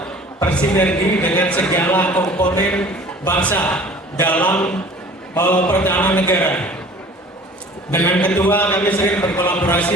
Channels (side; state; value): both; normal; correlation 0.47